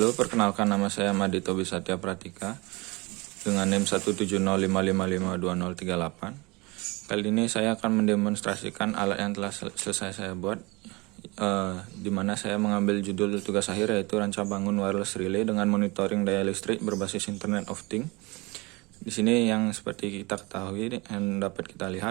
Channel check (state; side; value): quieter; left; 25.0 dB